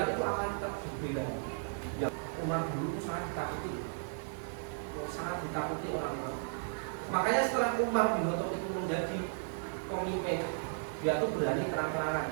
itu akan tetap berbeda. Yang Umar dulu itu sangat ditakuti orang-orang. Makanya setelah Umar bin Khattab itu menjadi pemimpin, dia tuh berani terang-terangan,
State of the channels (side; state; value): left; silent; digital silence